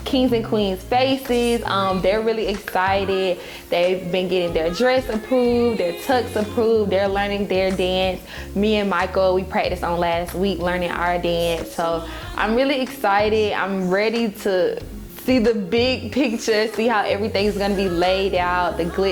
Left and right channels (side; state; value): both; identical; correlation 1.00